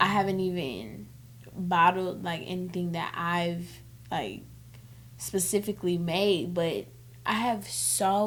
haven't even bottled like anything that I've like specifically made, but I have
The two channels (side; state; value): both; identical; correlation 1.00